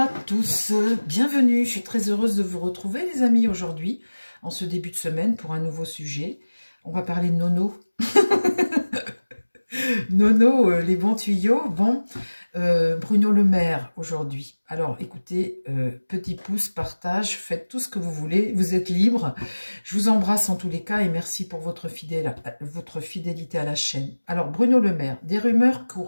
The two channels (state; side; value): inverted; both; correlation -1.00